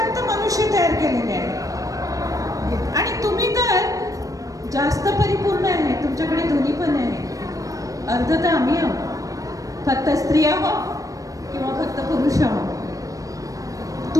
मनुष्य तयार केलेले आहे आणि तुम्ही तर जास्त परिपूर्ण आहे, तुमच्याकडे दोन्ही पण आहे. अर्ध तर आम्ही आहोत, फक्त स्त्री आहोत किंवा फक्त पुरुष आहोत.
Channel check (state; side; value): late; left; 0.16 ms